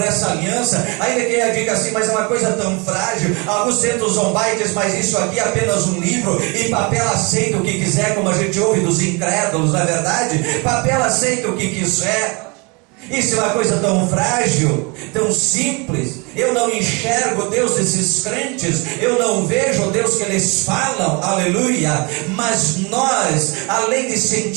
essa aliança. Ainda que ela diga assim: mas é uma coisa tão frágil. Alguns tentam zombar e dizem: mas isso aqui é apenas um livro, e papel aceita o que quiser, como a gente ouve dos incrédulos, não é verdade? Papel aceita o que quiser. Isso é uma coisa tão frágil, tão simples. Eu não enxergo Deus desses crentes, eu não vejo o Deus que eles falam, aleluia. Mas nós, além de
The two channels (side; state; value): left; quieter; 29.6 dB